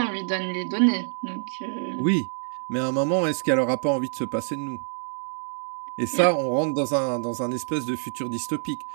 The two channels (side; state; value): left; silent; digital silence